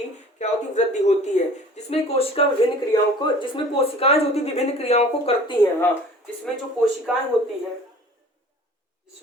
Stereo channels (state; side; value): normal; both; correlation 0.47